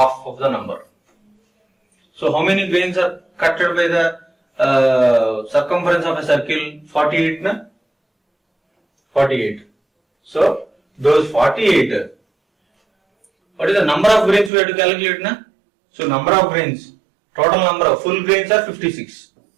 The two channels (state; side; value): drops out; left; at 14.5 s